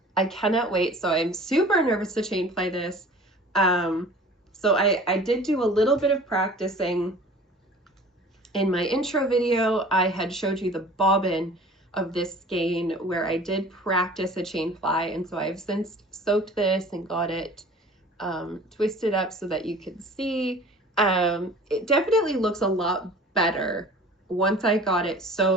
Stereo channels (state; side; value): normal; both; correlation 0.45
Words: I cannot wait. So I'm super nervous to chain play this. So I did do a little bit of practicing. In my intro video, I had showed you the bobbin of this skein where I did practice a chain fly, and so I've since soaked this and got it twisted up so that you can see. It definitely looks a lot better once I got it